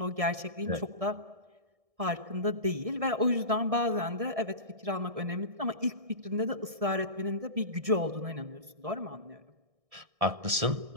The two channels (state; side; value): late; left; 1.6 ms